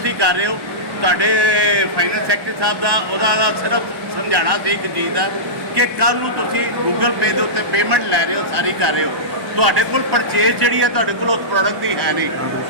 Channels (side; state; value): left; late; 1.1 ms